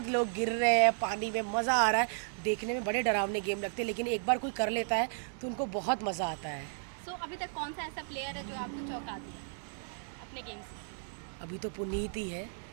लोग गिर रहे हैं पानी में, मज़ा आ रहा है देखने में। बड़े डरावने गेम लगते हैं, लेकिन एक बार कोई कर लेता है तो उनको बहुत मज़ा आता है। सो अभी तक कौन सा ऐसा प्लेयर है जो आपको चौंका दिया अपने गेम से? अभी तो पुनीत ही है,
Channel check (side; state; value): left; silent; digital silence